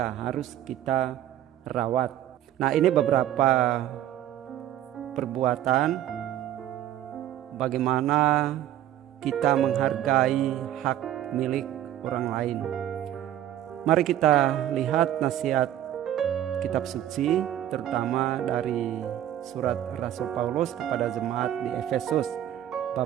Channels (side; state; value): left; quieter; 12.1 dB